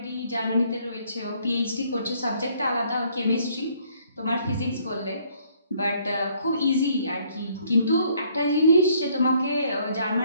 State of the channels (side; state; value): both; inverted; correlation -0.64